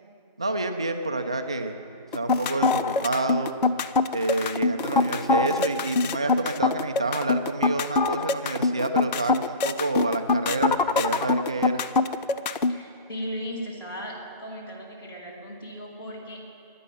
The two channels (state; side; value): inverted; both; correlation -0.32